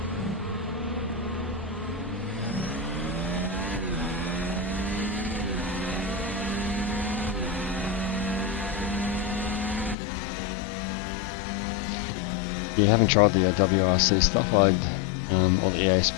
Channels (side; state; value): right; drops out; at 10.0 s